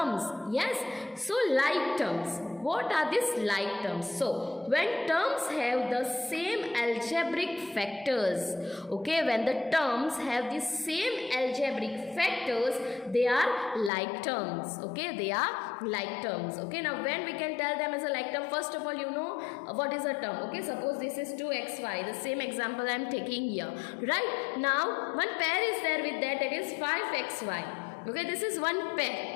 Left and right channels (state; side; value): drops out; right; at 13.9 s